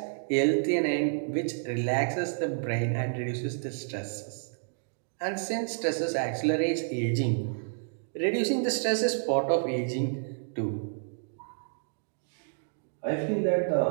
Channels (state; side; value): silent; left; digital silence